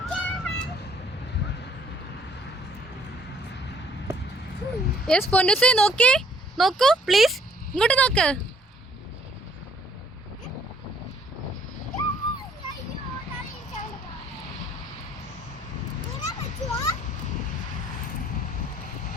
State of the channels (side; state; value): both; normal; correlation 0.62